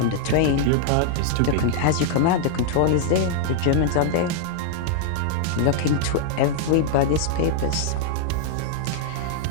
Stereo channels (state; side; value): different; both; correlation -0.01